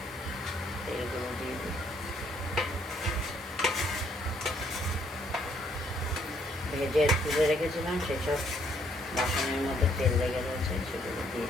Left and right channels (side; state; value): both; normal; correlation 0.68